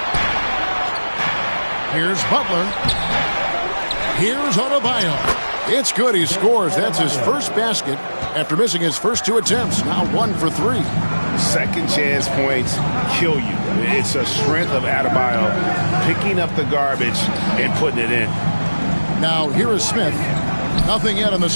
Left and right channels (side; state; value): both; inverted; correlation -1.00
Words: Here's Butler. Here's Adebayo. It's good. He scores. That's his first basket after missing his first 2 attempts. Now 1 for 3. Second chance points kill you. It's a strength of Adebayo picking up the garbage and putting it in. Now here is Smith. Nothing yet on the